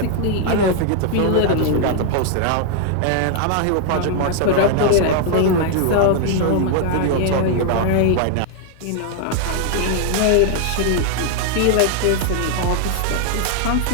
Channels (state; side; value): different; both; correlation 0.00